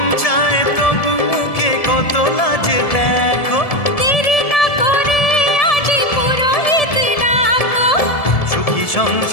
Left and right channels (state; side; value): late; right; 1.7 ms